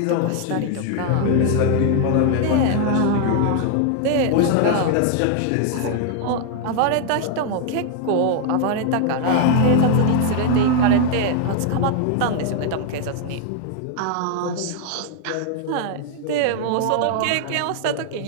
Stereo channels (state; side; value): different; both; correlation 0.00